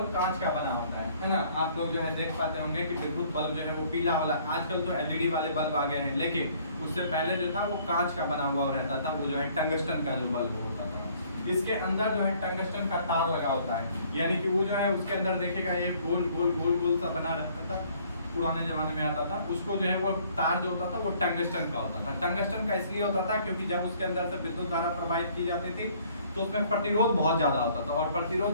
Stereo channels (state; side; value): inverted; both; correlation -0.60